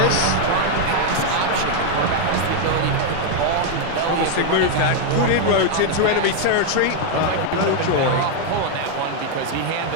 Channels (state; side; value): different; both; correlation 0.00